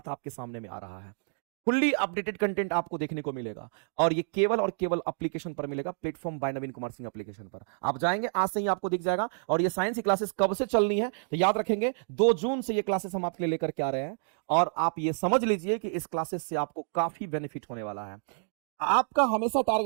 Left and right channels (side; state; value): left; silent; digital silence